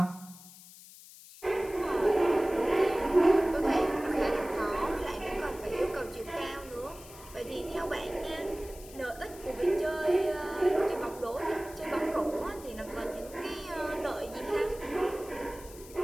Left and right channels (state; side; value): noise; left; hiss, 18 dB below the sound